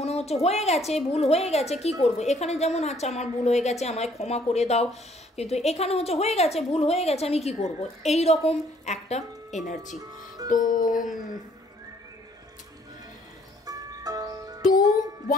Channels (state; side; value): normal; both; correlation 0.63